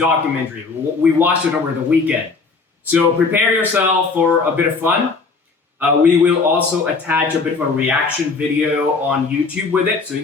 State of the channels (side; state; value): right; quieter; 4.4 dB